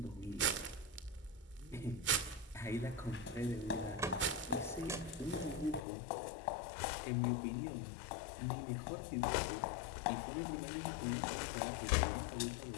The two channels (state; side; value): drops out; right; at 5.9 s